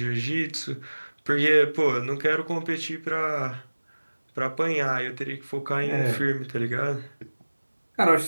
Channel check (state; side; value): inverted; both; correlation -1.00